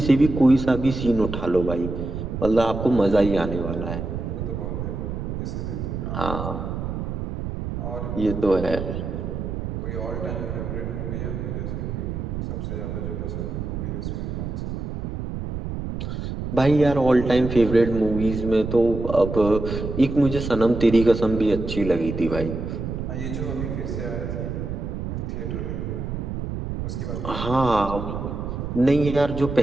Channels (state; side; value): noise; right; rumble, 5 dB below the sound